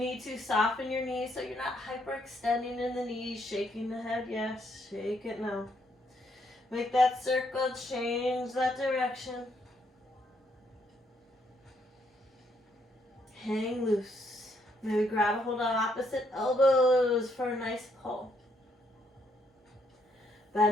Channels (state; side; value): normal; both; correlation 0.72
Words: to soften your knees so you're not hyperextending in the knees, shaking the head, yes, shake it now. Make that circle, change that direction. Hang loose. Maybe grab a hold on opposite elbows for a nice pull.